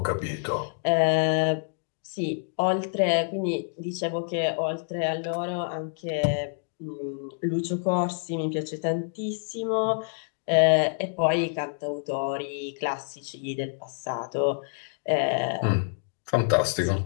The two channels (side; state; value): right; silent; digital silence